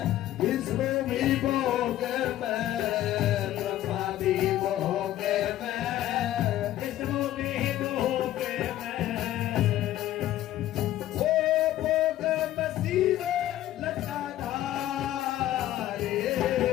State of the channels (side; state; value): right; quieter; 13.5 dB